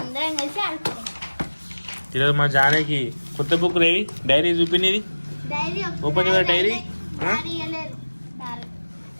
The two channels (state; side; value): inverted; both; correlation -1.00